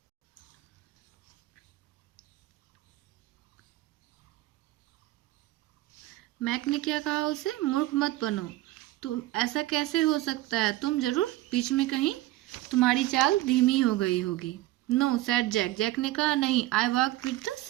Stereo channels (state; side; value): quieter; left; 17.0 dB